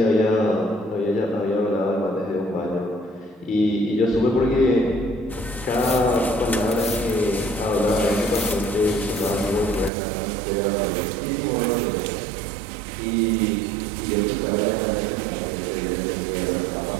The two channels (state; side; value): drops out; left; at 9.9 s